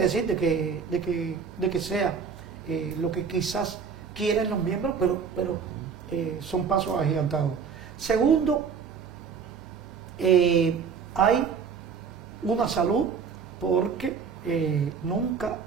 de que sea lo que quizás quieren los miembros, pero son pasos agigantados. Segundo, hay una salud porque nunca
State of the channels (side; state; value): left; quieter; 6.2 dB